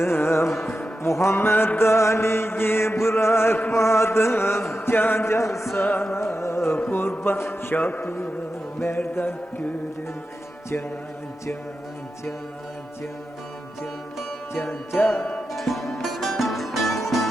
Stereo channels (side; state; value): both; normal; correlation 0.90